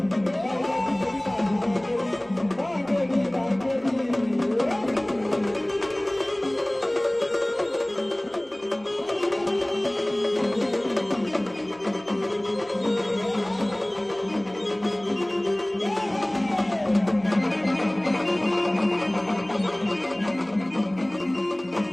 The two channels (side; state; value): right; noise; hum, 29 dB below the sound